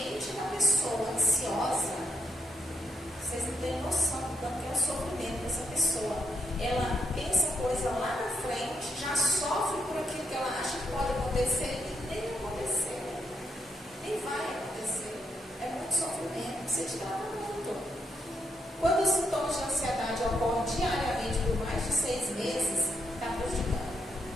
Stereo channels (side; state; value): both; normal; correlation 0.78